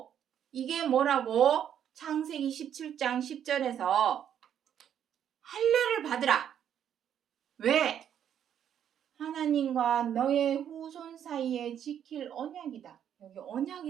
창세기 17장 10절에서 할례를 받으라. 왜? 하나님과 너의 후손 사이에 지킬 언약이다. 여기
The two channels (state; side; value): quieter; left; 9.4 dB